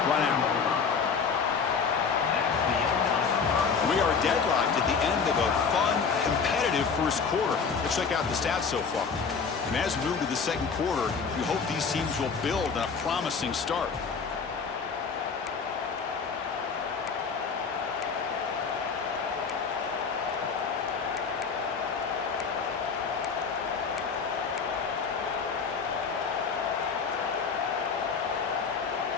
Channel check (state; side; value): quieter; right; 5.6 dB